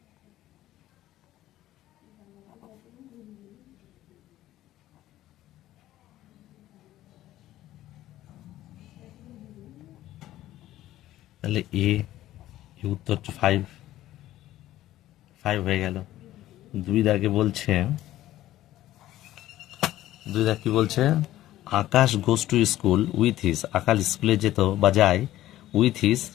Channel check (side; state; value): right; quieter; 14.4 dB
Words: তাহলে এ উত্তর 5 হয়ে গেল। 2 দাগে বলছে, 2 দাগ কি বলছে? Akash goes to school with his, Akash স্কুলে যেত বা যায় উইথ হিজ,